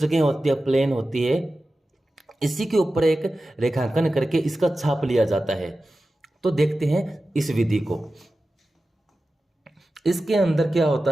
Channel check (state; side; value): normal; both; correlation 0.94